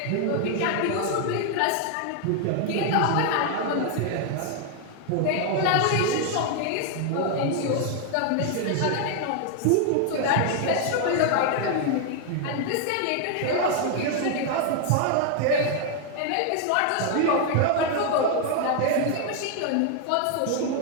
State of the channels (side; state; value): both; different; correlation 0.00